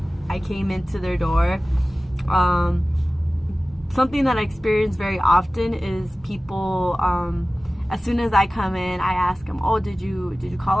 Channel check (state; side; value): normal; both; correlation 0.97